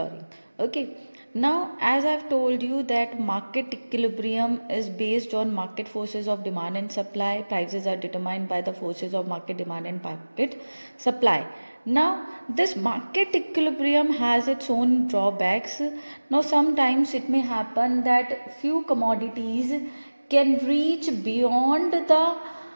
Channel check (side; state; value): both; inverted; correlation -1.00